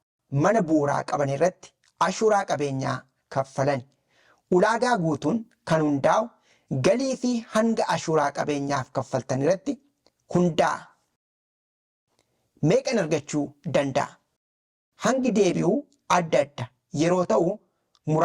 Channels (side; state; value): both; identical; correlation 1.00